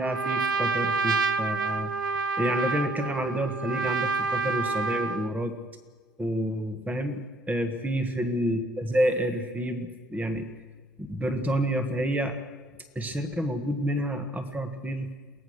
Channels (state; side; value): normal; both; correlation 0.63